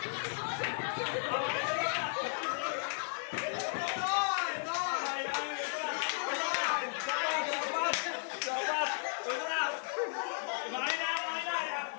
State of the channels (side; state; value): right; silent; 55 dB below the other